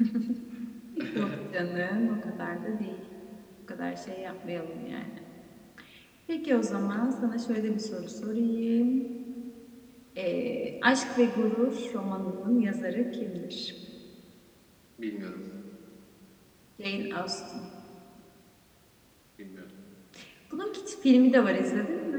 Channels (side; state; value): both; identical; correlation 1.00